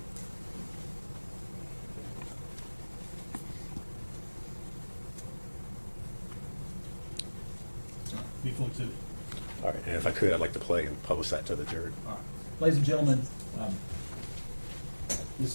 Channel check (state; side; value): inverted; both; correlation -1.00